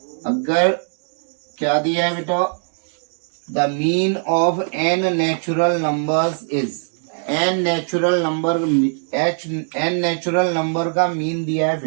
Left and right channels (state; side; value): silent; left; 65 dB below the other